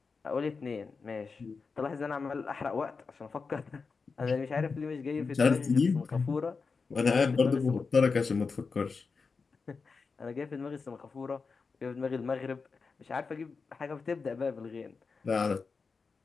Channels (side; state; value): right; quieter; 4.8 dB